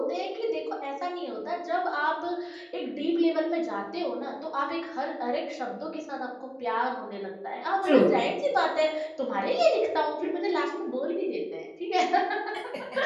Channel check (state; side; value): identical; both; correlation 1.00